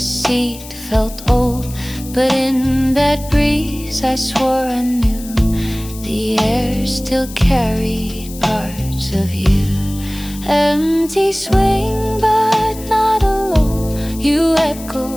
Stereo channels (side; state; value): left; noise; hiss, 16 dB below the sound